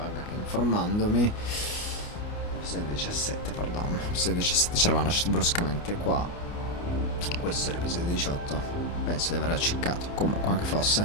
che informandomi, episodio 17, perdono, episodio 17 ci eravamo lasciati bruscamente qua. Questo è l'episodio 18, penso di aver acciccato, comunque anche fosse.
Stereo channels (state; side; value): late; right; 29 ms